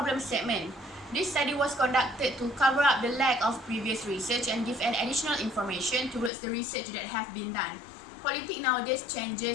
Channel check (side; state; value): right; drops out; at 6.3 s